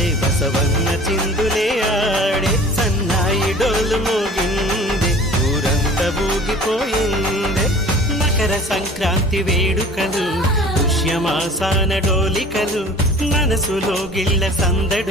బసవన్న చిందులే ఆడే సన్నాయి డోలు మోగిందే ఊరంతా ఊగిపోయిందే మకర సంక్రాంతి వేడుకలు పుష్యమాసాన డోలికలు మనసులో గిళ్ళ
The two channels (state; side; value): normal; both; correlation 0.45